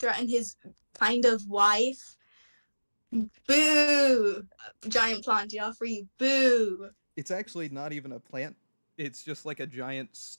his kind of wife. Boo! Giant plant Joffrey, boo! It's actually not even a plant. It's just like a giant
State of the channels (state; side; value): inverted; both; correlation -1.00